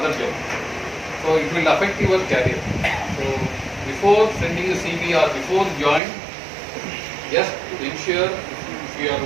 job. So it will affect your career. So before sending a CV or before join, just ensure if you are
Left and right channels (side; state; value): left; drops out; at 6.0 s